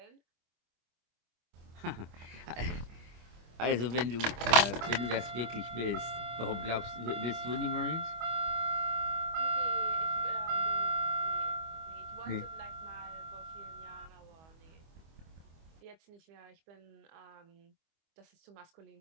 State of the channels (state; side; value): late; left; 25 ms